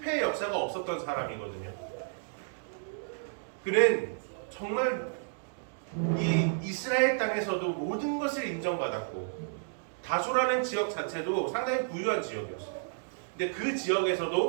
역사가 없었던 사람이거든요. 그는 정말 이 이스라엘 땅에서도 모든 것을 인정받았고, 다소라는 지역 자체도 상당히 부유한 지역이었어요. 근데 그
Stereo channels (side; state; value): left; silent; digital silence